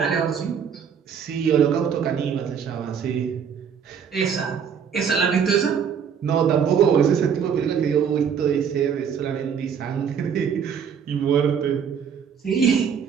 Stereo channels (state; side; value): quieter; left; 7.3 dB